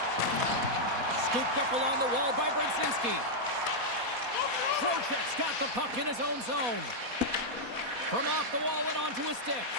Scooped up along the wall by Brzezinski. Trocheck's got the puck in his own zone. From off the wall and onto his stick.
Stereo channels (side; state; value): left; late; 4.2 ms